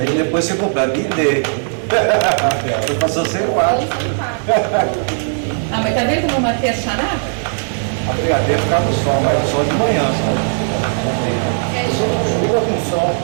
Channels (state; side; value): silent; left; digital silence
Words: depois você completa e D. Você passou sem quatro. Ah, mas tá vendo como eu matei a charada? A brigadeira ficava no sol, mas no sol de manhã só. Chuva com sol.